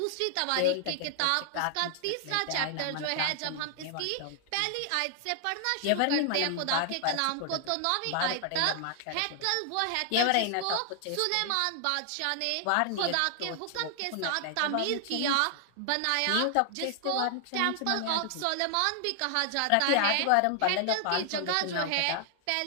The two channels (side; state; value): both; different; correlation 0.00